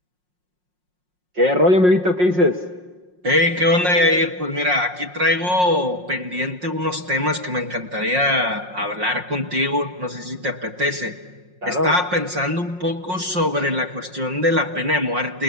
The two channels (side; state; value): left; late; 5.5 ms